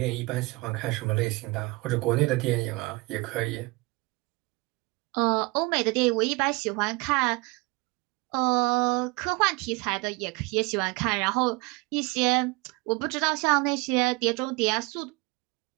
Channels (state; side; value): quieter; left; 25.0 dB